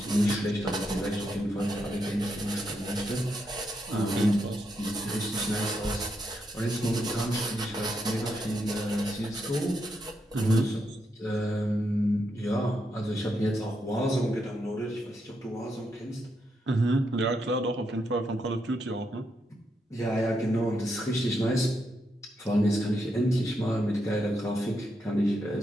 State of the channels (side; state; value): both; normal; correlation 0.81